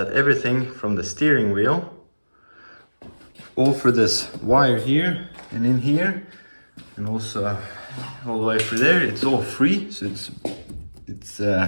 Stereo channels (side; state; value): both; inverted; correlation -1.00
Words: everything from the steering wheel, all through this wire here and in here, and also all the way through there, it's all free, so